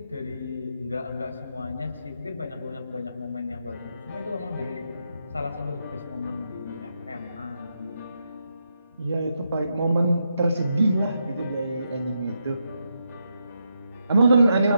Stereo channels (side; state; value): both; inverted; correlation -0.83